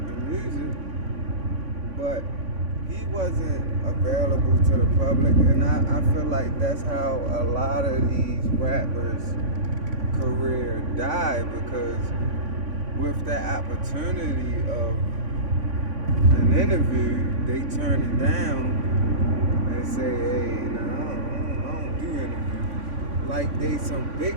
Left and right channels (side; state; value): left; late; 3.5 ms